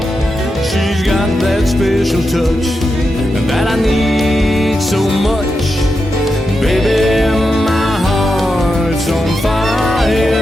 She's got that special touch that I need so much. Baby, my heart's on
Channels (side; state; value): both; normal; correlation 0.87